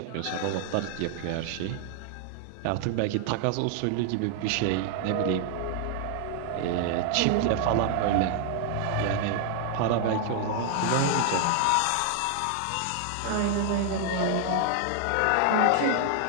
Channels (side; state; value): both; different; correlation 0.00